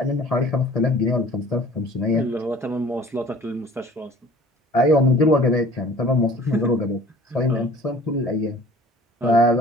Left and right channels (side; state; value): both; normal; correlation 0.48